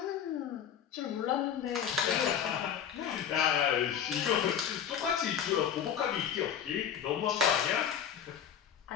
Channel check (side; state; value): right; quieter; 8.7 dB